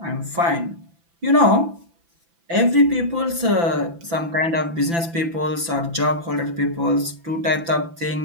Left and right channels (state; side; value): late; left; 5.9 ms